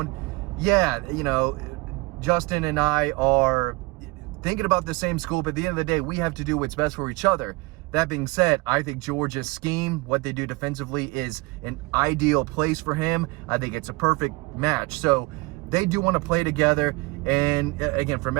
yeah, Justin and I are thinking about the same school, but at the end of the day, we have to do what's best for each other. That being said, I think Georgia's scheme, what they do defensively, is an ideal place for him. I think it's a perfect match. So they do want to play together. And again, from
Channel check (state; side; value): quieter; left; 24.6 dB